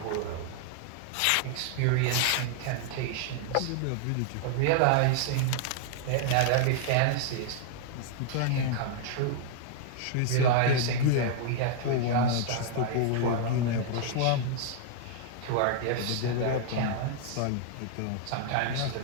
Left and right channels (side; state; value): both; different; correlation -0.01